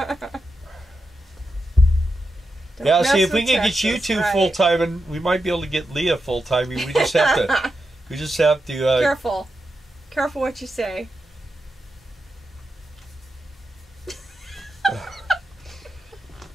Yeah, see, if we can get you two full time, and we might be able to get Leah full time. We just have to. We just have to. Careful, careful what you say.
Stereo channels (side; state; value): both; normal; correlation 0.88